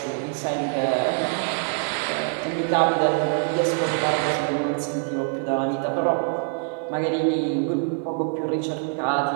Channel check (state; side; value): silent; left; 62 dB below the other